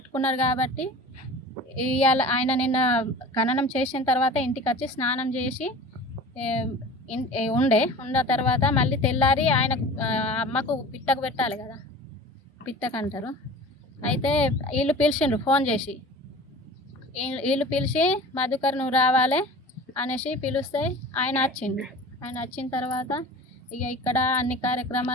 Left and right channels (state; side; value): normal; both; correlation 0.39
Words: కాబట్టి ఇవాళ ఆయన నిన్న ఖననం చేసిన తర్వాత ఇంటికి వచ్చి స్నానం చేసి ఉన్న తర్వాత మళ్ళీ తెల్లారి ఆయన అమ్మకు పిట్టకు పెట్టాలి కదా, పిట్టకు అంటారు. అయితే వీళ్ళు పిలిచిండ్రు ఫోన్ చేసి. వీళ్ళు పిలిచి మధుకర్ నువ్వు రావాలి అనేసి పిలిస్తే ఆయన వచ్చిండు. ఆయన వచ్చిన తర్వాత ఇక ఇక్కడ అన్ని